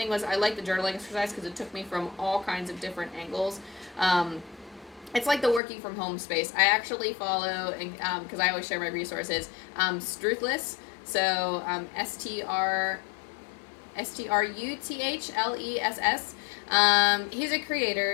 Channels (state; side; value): drops out; right; at 5.6 s